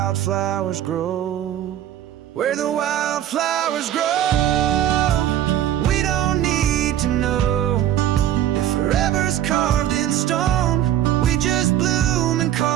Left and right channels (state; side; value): quieter; left; 11.6 dB